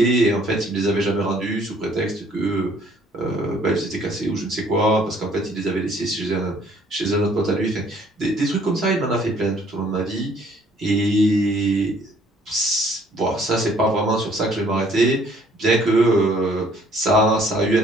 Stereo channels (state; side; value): normal; both; correlation 0.61